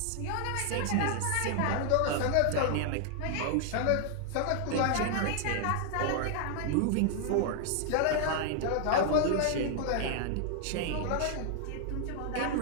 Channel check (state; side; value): different; both; correlation 0.00